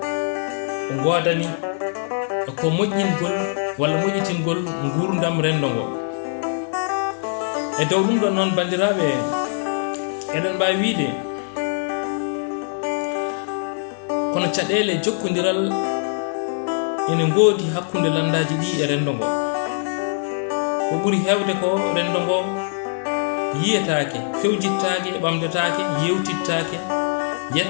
godani ko moƴƴingol walla moƴƴitingol gurdam rendo ngo. e dow ɗum ɗo noon bandiraɓe, eɗen mbawi wiide kono caɗele jokkodiral ene ngoodi hakkunde landaji ɗi e rendo ngo. ko ɓuri hewde ko rendo ngo yiyetake, fewjittake, ɓamdetake, yewtittake,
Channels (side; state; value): right; silent; digital silence